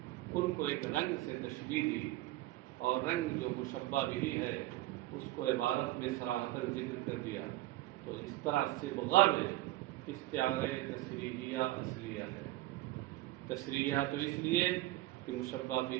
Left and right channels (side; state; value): left; quieter; 17.0 dB